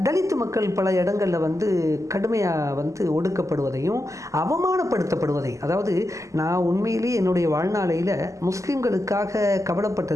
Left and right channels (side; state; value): left; late; 0.16 ms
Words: தலித் மக்கள் பல இடங்களில் வந்து கடுமையாக வந்து ஒடுக்கப்படுவதையும் அவமானப்படுத்தப்படுவதையும், அதாவது நான் உண்மையிலேயே என்னுடைய வாழ்நாளையில் முஸ்லீம்களுக்காக